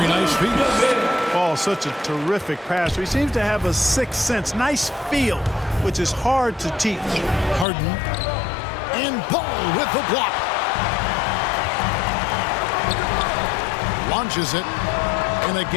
nice feed. Ball, such a terrific passer. He seems to have a sixth sense. Nice feel, which is hard to teach. Harden. And Ball with the block. Launches it. And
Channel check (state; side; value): drops out; right; at 7.7 s